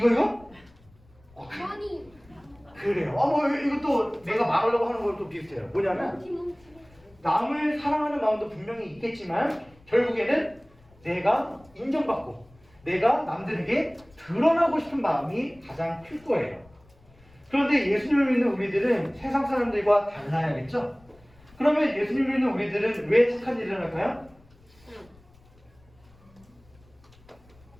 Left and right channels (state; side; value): noise; left; rumble, 28 dB below the sound